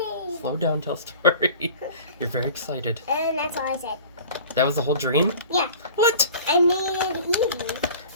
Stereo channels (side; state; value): both; inverted; correlation -0.42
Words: Evie!" Slow down, tell a story. You're very excited. And that's all I said. That was the whole dream? Yeah. What? I made Evie.